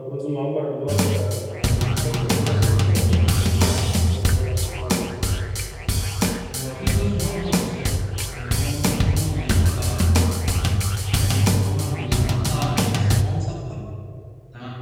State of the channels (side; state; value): both; identical; correlation 1.00